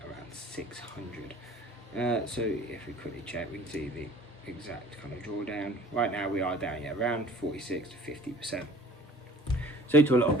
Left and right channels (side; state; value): both; normal; correlation 0.48